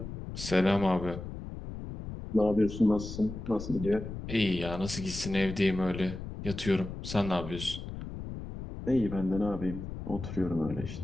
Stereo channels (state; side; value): noise; left; rumble, 9 dB below the sound